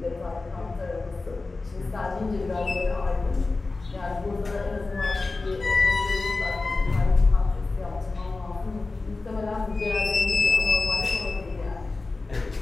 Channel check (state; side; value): quieter; right; 3.6 dB